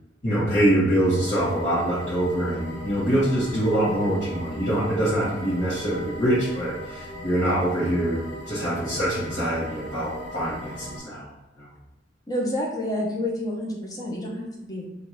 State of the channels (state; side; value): normal; both; correlation 0.61